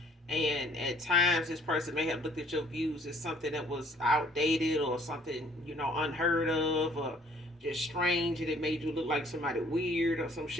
And at times this person may have looked at your views as something that was outdated, or something unheard of, or just strange, and it made you look like somebody weird or some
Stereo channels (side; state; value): both; normal; correlation 0.59